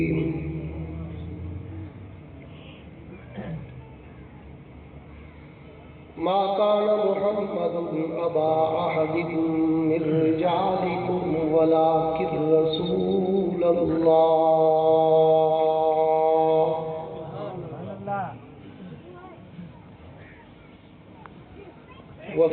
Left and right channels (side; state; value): both; identical; correlation 1.00